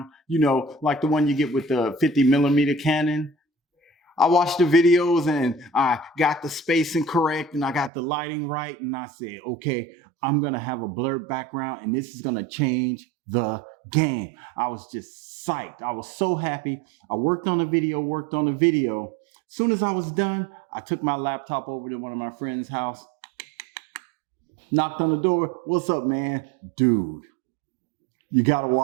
like the one you get with the 50mm Canon. I watched the videos and I got the spacing correct and I got the lighting right. And I said, okay, I'm going to have a blurred background and this is going to change the game. I was just psyched. I was so happy. I worked on the video. As soon as I was done, I took my laptop over to one of my friend's house, knocked on the door. What's up, man? Dude, you got to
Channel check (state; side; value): drops out; left; at 7.9 s